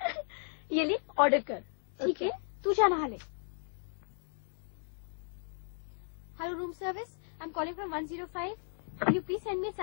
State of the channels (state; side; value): silent; right; digital silence